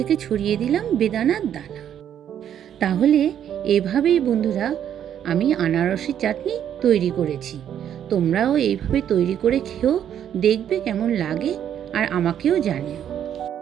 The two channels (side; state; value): left; quieter; 9.7 dB